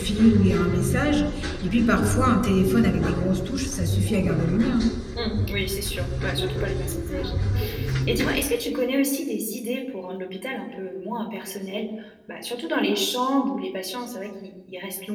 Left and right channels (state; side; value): identical; both; correlation 1.00